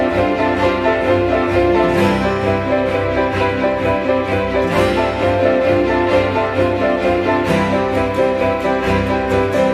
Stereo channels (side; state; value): both; identical; correlation 1.00